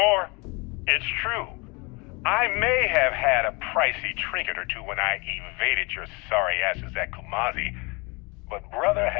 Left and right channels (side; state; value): right; quieter; 28.2 dB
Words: It's true. I may have had a pricey trinket or two when I evaded your sorry asses at Kumazi, but brother